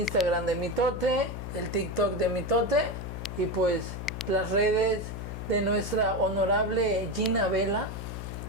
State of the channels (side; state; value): left; noise; hum, 7 dB below the sound